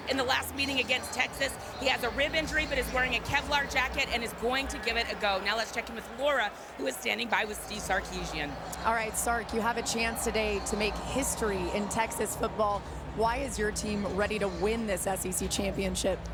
in the last meeting against Texas. He has a rib injury, but is wearing a Kevlar jacket and is going to give it a go. Now let's check in with Laura, who is standing by with Steve Sarkisian. All right, Sark, you have a chance today to make history in Texas football. Why is your team ready to win this SEC championship?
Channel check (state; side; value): identical; both; correlation 1.00